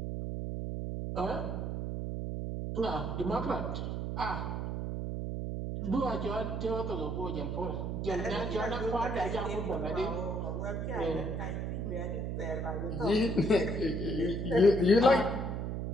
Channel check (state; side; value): noise; right; hum, 2 dB below the sound